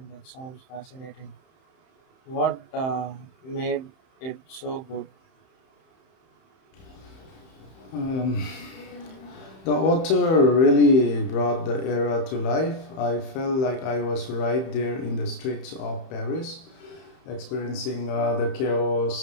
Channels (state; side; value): late; right; 31 ms